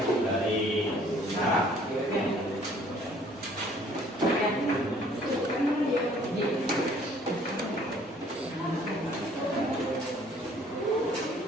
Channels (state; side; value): normal; both; correlation 0.58